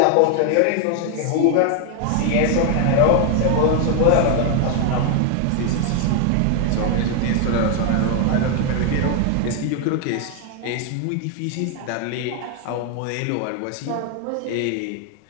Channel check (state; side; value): different; both; correlation 0.00